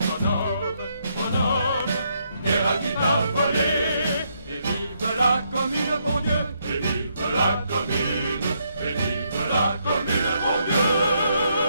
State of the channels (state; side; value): inverted; both; correlation -0.76